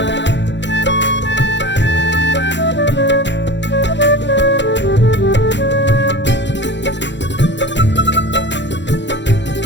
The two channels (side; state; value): right; late; 0.52 ms